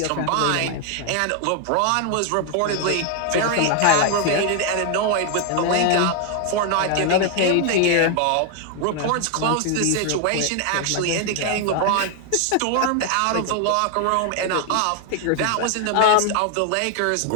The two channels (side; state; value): both; different; correlation 0.00